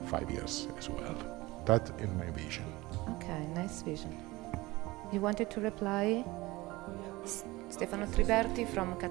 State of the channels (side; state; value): left; quieter; 20.6 dB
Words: 5 years as well. That is my vision. Okay, nice vision. You wanted to reply? Stefano Triberti from